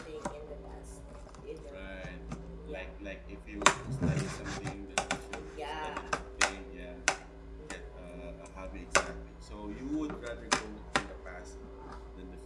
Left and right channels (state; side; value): identical; both; correlation 1.00